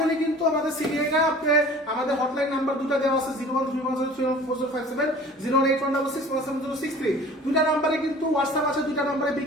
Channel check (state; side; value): normal; both; correlation 0.45